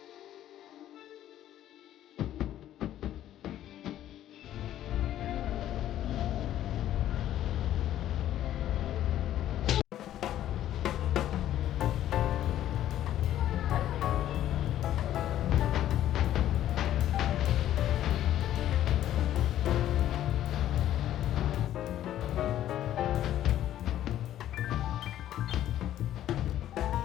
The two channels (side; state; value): right; quieter; 12.2 dB